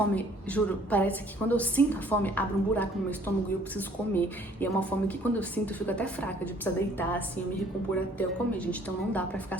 juro, parece que quando eu sinto a fome, abre um buraco no meu estômago e eu preciso comer. E é uma fome que quando eu sinto, eu fico até fraca, de precisar deitar, assim, eu me recompor até eu comer, gente. Então não dá pra ficar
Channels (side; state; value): both; normal; correlation 0.58